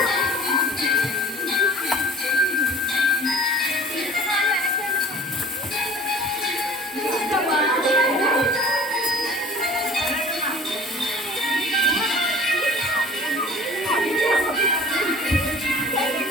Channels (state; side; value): normal; both; correlation 0.47